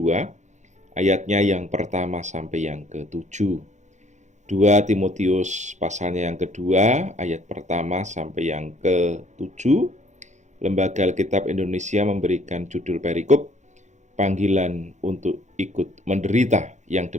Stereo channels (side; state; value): left; late; 0.34 ms